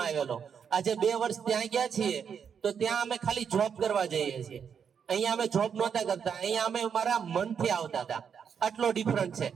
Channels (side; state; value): left; quieter; 7.2 dB